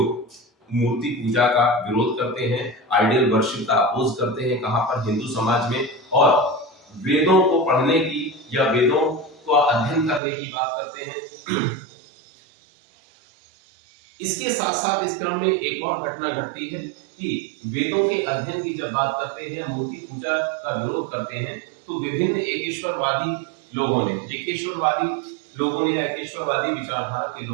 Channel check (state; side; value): drops out; left; at 10.2 s